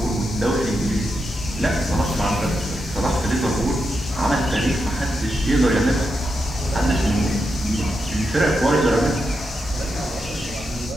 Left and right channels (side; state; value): both; normal; correlation 0.85